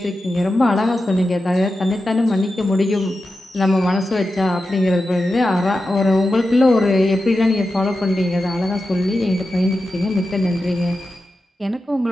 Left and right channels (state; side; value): normal; both; correlation 0.91